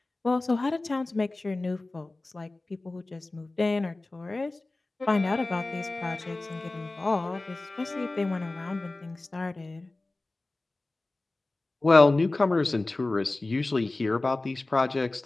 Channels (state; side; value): quieter; right; 3.0 dB